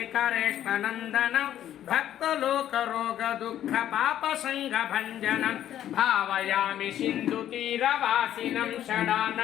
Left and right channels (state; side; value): quieter; right; 11.4 dB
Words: भक्तलोकरोगदुःखपापसङ्गभञ्जनं भावयामि सिन्धुतीरवासिनं